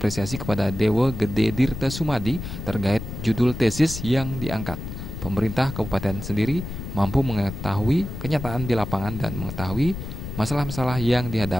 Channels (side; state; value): left; noise; rumble, 8 dB below the sound